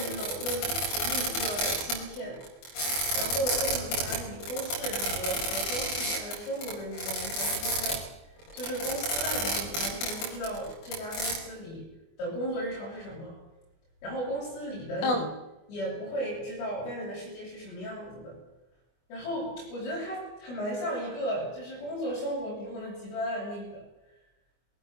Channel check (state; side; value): late; right; 24 ms